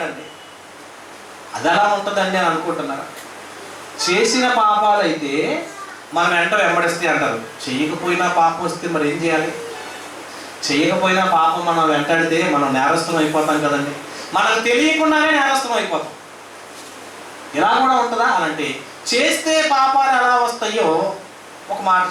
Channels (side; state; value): both; identical; correlation 1.00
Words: అది ఎలా ఉంటుందండి అని అనుకుంటున్నారా? చేసిన పాపాలు అయితే మనం వెంట వెంబడిస్తే అంటారు, చెయ్యకపోయినా పాపం వస్తే మరి ఏం చేయాలి? చెయ్యకపోయినా పాపం మనం వెంటాడితే మనం నేరస్థం అయిపోతాం కదండి. మనకు తెలియకుండానే నేరస్థం అయిపోతాం. ఇలా కూడా ఉంటుందా అని అంటే, చేస్తే పాపాలు ఎలా వస్తాయో ఒక మాట